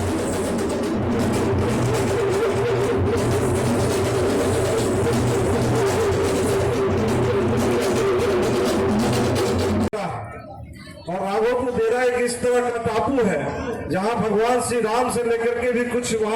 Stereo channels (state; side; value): identical; both; correlation 1.00